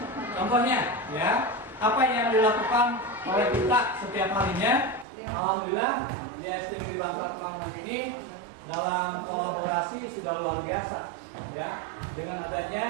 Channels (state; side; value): drops out; left; at 5.1 s